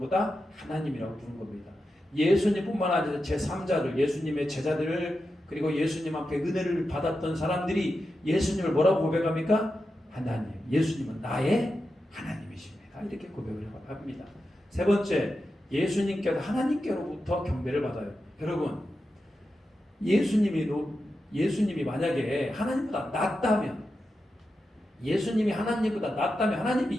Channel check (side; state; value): both; normal; correlation 0.89